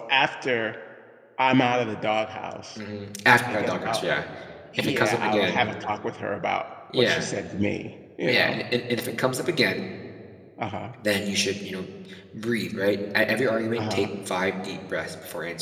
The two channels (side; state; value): both; identical; correlation 1.00